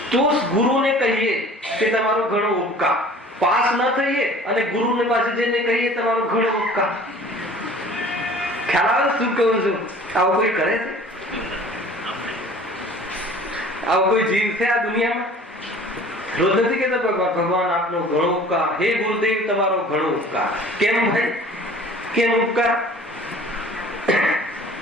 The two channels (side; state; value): both; normal; correlation 0.47